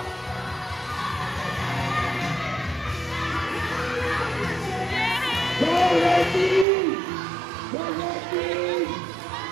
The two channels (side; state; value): left; drops out; at 6.7 s